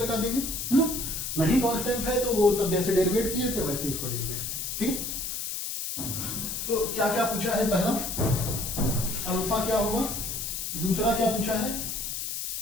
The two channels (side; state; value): left; noise; hiss, 4 dB below the sound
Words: देंगे, है ना। नहीं कांस्टेंट है तो वो तब जैसे डेरिवेट किए थे वैसे इसको डेरिवेट किए, ठीक है। तो क्या क्या पूछा है, पहला अल्फा क्या होगा, दूसरा क्या पूछा है,